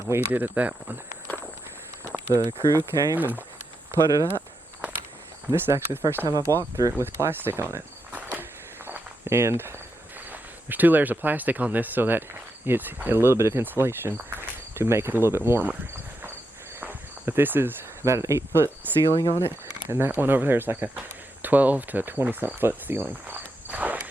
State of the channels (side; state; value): both; normal; correlation 0.85